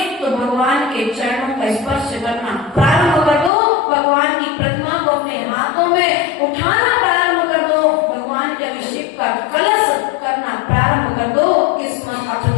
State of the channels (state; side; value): drops out; right; at 3.5 s